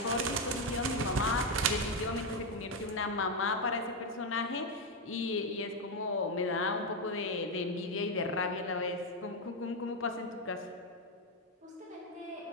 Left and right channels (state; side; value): normal; both; correlation 0.06